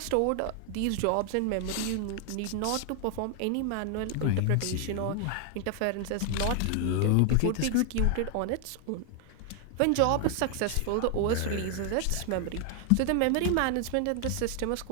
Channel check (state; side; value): different; both; correlation 0.00